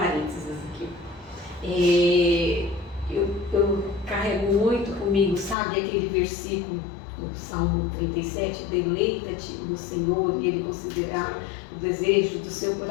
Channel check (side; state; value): right; drops out; at 5.6 s